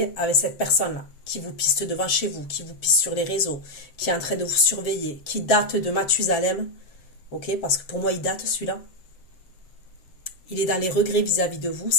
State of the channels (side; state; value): right; late; 7.7 ms